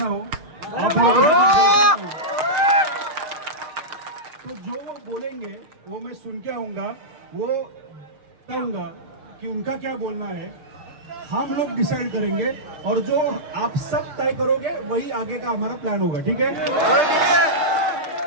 हो, आप लोगों के साथ गलत ना हो। तो जो वो बोलेंगे वो मैं सुन के आऊंगा, वो बताऊंगा कि उनका क्या बोलना है, हम लोग डिसाइड करेंगे और जो आप सब तय करोगे वही आगे का हमारा प्लान होगा। ठीक है?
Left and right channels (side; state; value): left; late; 6.6 ms